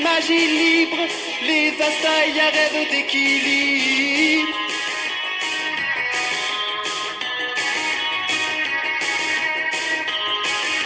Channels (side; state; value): both; identical; correlation 1.00